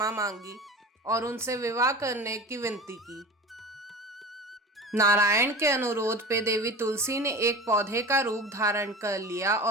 मांगी और उनसे विवाह करने की विनती की। नारायण के अनुरोध पे देवी तुलसी ने एक पौधे का रूप धारण कर लिया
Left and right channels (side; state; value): both; normal; correlation 0.34